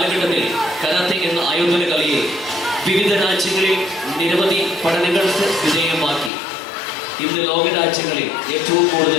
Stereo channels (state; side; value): drops out; right; at 6.3 s